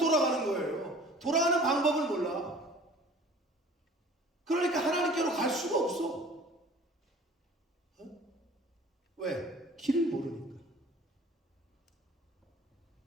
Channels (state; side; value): normal; both; correlation 0.48